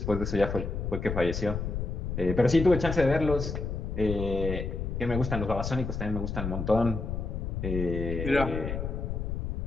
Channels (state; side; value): noise; left; rumble, 3 dB below the sound